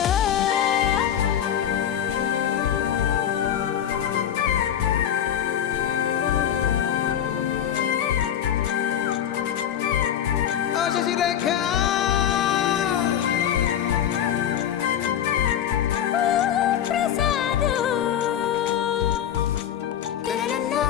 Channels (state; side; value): quieter; right; 9.9 dB